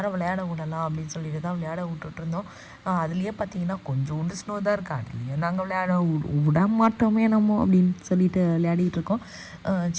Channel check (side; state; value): both; identical; correlation 1.00